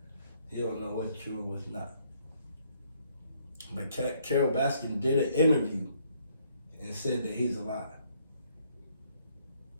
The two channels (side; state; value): both; inverted; correlation -0.67